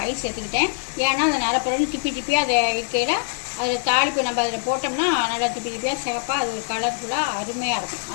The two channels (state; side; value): silent; right; digital silence